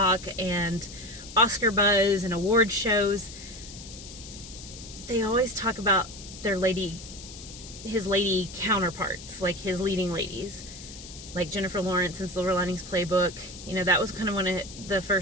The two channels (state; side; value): noise; left; hiss, 14 dB below the sound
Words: and Oscar buzz and award shows, they always talk about his lady counterparts, like his leading ladies, like Jennifer Lawrence in Silver Linings Playbook. That was kind of one of the